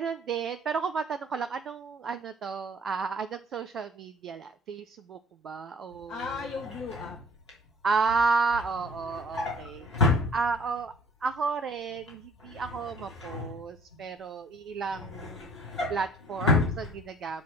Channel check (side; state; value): both; normal; correlation 0.54